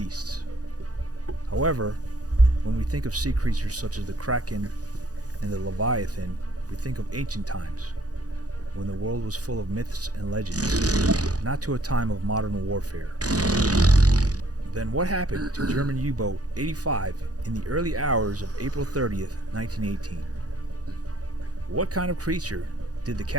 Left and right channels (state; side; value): late; left; 0.67 ms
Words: However, when we think of sea creatures such as the Kraken and the Leviathan, we think of ancient times, when the world was full of myths and legends, not to a time of modern warfare. Then what happened to German U-boat 85 in the early hours of April 30th, 1918? What kind of creature did the